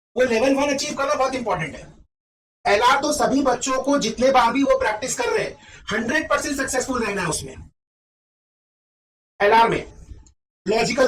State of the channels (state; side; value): identical; both; correlation 1.00